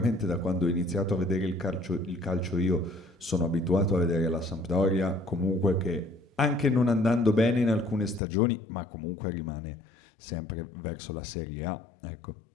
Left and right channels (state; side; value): drops out; right; at 8.2 s